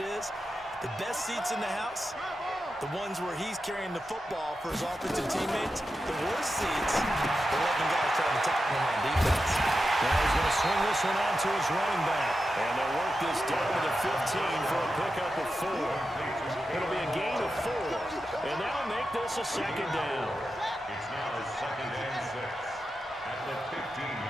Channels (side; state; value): both; normal; correlation 0.90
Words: The best seats in the house, the ones where he's carrying the football for his offensive teammates. The worst seats, the 11 guys trying to tackle him on defense. Now he's going to swing this one out to his running back. And they'll work this down to the 15 for a pickup of 4. It'll be a gain of 4. And that'll make this a second down. It's now second and 6 at the